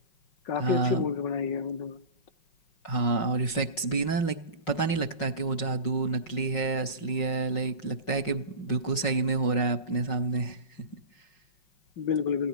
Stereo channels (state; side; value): late; right; 5.4 ms